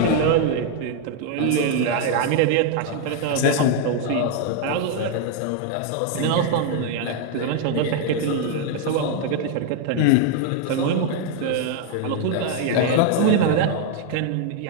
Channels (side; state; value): both; different; correlation 0.00